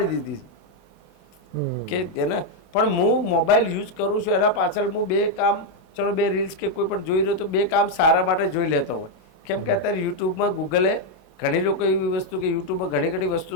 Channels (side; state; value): right; late; 27 ms